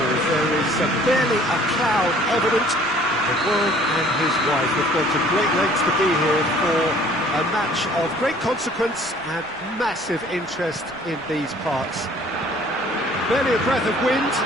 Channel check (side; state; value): right; noise; rumble, 28 dB below the sound